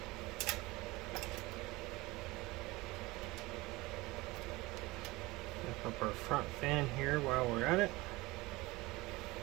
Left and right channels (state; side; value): quieter; left; 21.4 dB